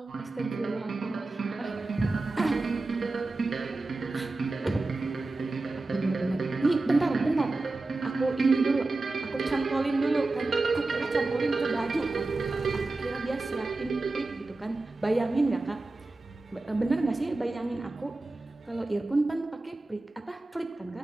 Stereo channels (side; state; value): left; quieter; 3.2 dB